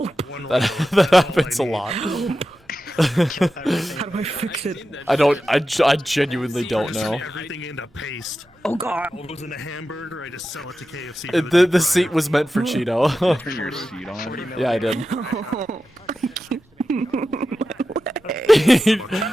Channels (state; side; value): normal; both; correlation 0.92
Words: happens a lot. How do I fix it? I genuinely don't know. Everything into paste. Oh god. All goes into hamburger. I just sell it to KFC. The seat was meant for Cheeto. Turn your seat on. Yeah, I did.